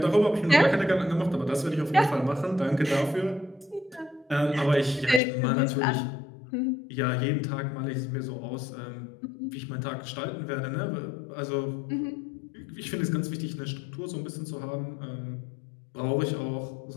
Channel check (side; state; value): right; drops out; at 5.2 s